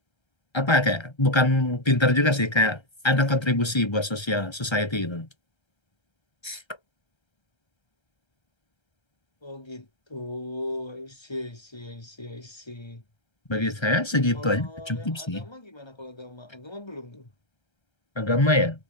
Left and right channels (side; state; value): right; late; 1.3 ms